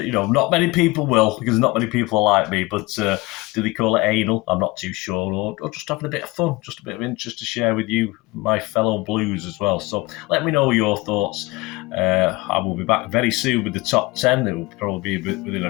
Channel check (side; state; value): right; quieter; 22.1 dB